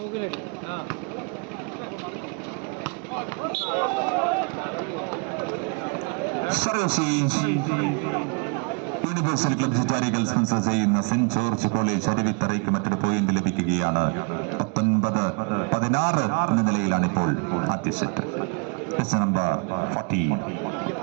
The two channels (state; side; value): quieter; left; 35.0 dB